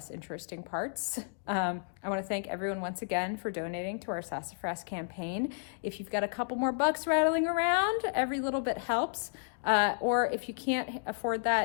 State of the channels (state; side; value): silent; right; digital silence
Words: interesting parts. I want to thank everyone once again for donating to our Sassafras campaign. If you've got a couple more bucks rattling around, every little bit helps. Or if you can't afford